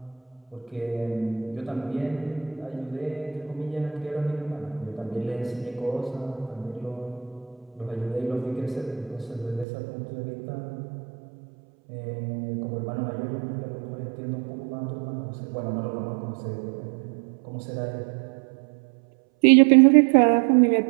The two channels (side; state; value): left; drops out; at 9.7 s